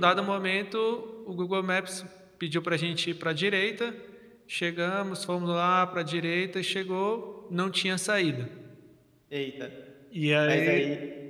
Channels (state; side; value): identical; both; correlation 1.00